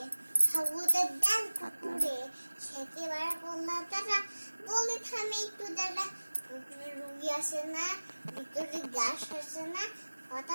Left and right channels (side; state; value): both; inverted; correlation -1.00